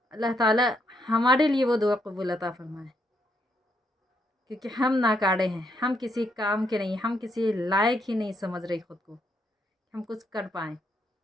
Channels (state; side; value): normal; both; correlation 0.76